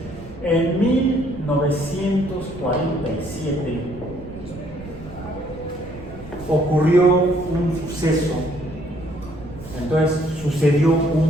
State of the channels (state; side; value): noise; right; rumble, 16 dB below the sound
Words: En 1947 ocurrió un suceso. Entonces sucedió